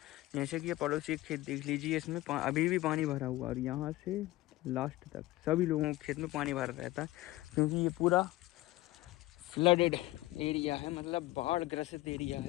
जैसे कि ये पड़ोसी खेत देख लीजिए, इसमें अभी भी पानी भरा हुआ, और यहाँ से लास्ट तक सभी लोगों के खेत में पानी भरा रहता है क्योंकि ये पूरा फ्लडेड एरिया है, मतलब बाढ़ ग्रसित एरिया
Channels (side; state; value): right; quieter; 18.0 dB